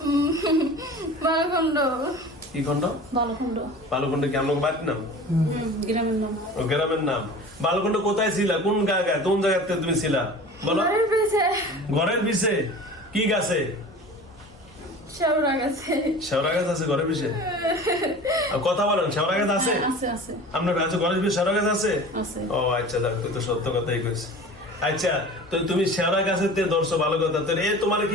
বালখণ্ড কি খন্ড বালকুণ্ড বালুকুণ্ড কি আমার বাড়ির নাম গ্রামের নাম। ও গ্রামের নাম বালুকুণ্ড কোথায় ছিলা কোন জায়গায় কোন জায়গাতে তুমি ছিলা বলো বাড়ির পিছে ঘরের পিছে কি গাছে শেওড়া গেছে শেওড়া গাছ আছে ঘরের পিছে আর কথা বলেন শেওড়া গাছ আছে আছে আপনার কাছে ঘরের পিছে শেওড়া গাছ আছে আছে। ও আচ্ছা দেখ তুই তো সত্য কথাই কইস আচ্ছা তো তুমি শেওড়া গাছের তে ধরছো ভালো কথা তো এ তোমার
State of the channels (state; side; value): noise; left; hum, 26 dB below the sound